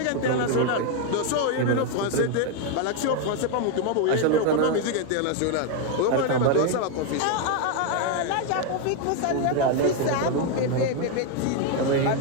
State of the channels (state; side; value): different; both; correlation 0.01